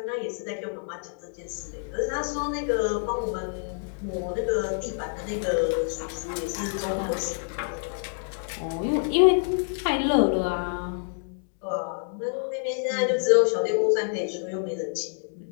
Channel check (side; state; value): right; silent; digital silence